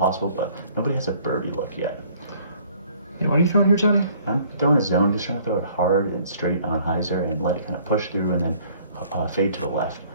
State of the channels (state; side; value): inverted; both; correlation -0.57